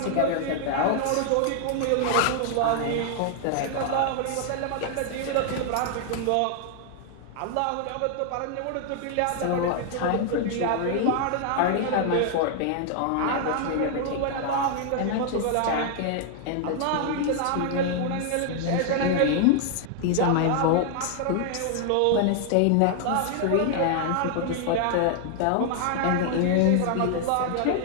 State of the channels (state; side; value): different; both; correlation 0.00